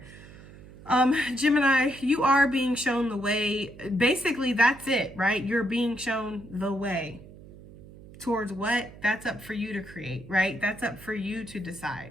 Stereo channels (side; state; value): right; noise; hum, 19 dB below the sound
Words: Gemini, you are being shown the way. Basically, that's it, right? You're being shown the way. Towards what? That's up for you to create, right? That's up for you to